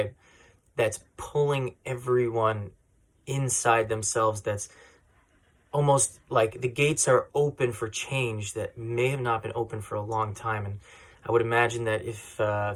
that's pulling everyone inside themselves. That's almost like the gates are open for change that may have not been open for a long time. And I would imagine that if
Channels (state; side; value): identical; both; correlation 1.00